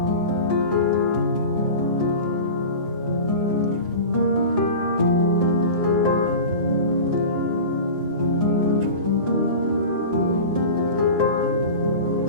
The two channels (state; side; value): inverted; both; correlation -0.33